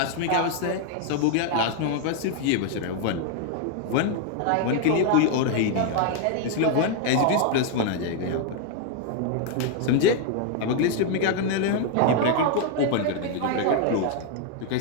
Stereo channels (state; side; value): different; both; correlation 0.00